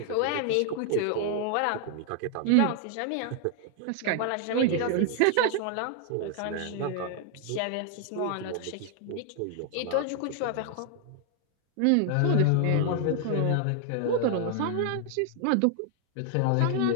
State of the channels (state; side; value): different; both; correlation 0.00